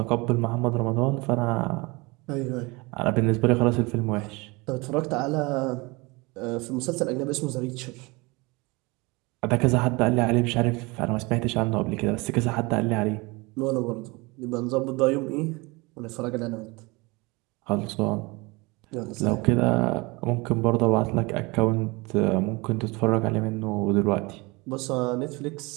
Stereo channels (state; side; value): quieter; left; 25.5 dB